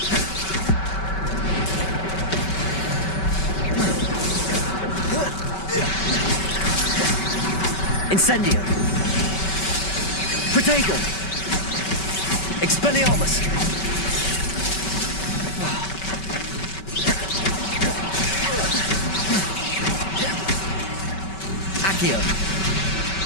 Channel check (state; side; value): late; right; 5.2 ms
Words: Incendio. Protego. Expelliarmus! Accio!